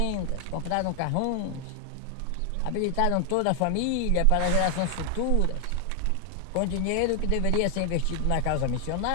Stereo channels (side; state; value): both; different; correlation 0.00